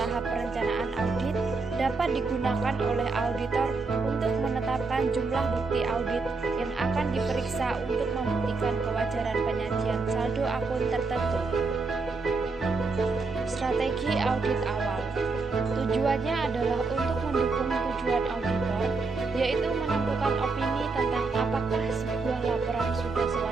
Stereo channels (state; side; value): quieter; left; 4.0 dB